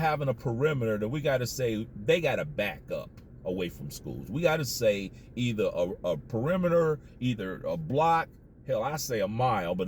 a perimeter that we got to say they got to back up away from schools. We got to say either a perimeter, either a block, hell, I say a mile, but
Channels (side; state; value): both; identical; correlation 1.00